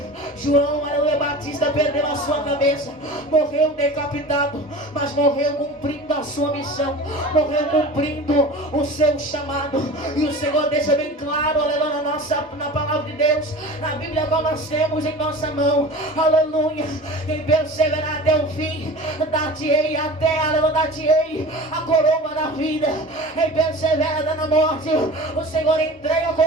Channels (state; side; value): normal; both; correlation 0.36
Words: João, aleluia, Batista perdeu a sua cabeça, morreu decapitado, mas morreu cumprindo a sua missão, morreu cumprindo o seu chamado. E o Senhor deixa bem claro, aleluia, na palavra de Deus, na Bíblia qual nós temos em nossa mão. Aleluia. Quem perseverar até o fim, dar-te-ei a coroa da vida. Quem persevera na morte, o Senhor entrega a